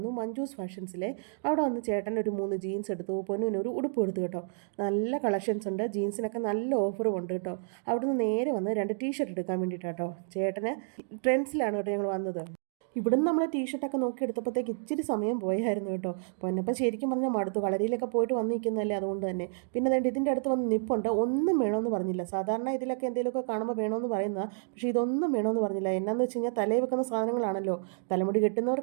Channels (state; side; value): silent; left; digital silence